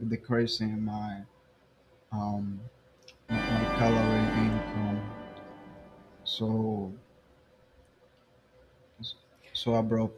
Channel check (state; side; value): identical; both; correlation 1.00